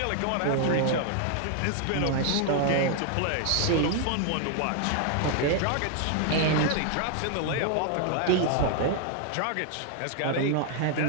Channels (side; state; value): both; different; correlation 0.00